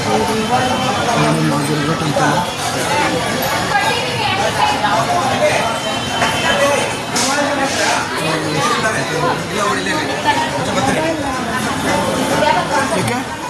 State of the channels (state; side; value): identical; both; correlation 1.00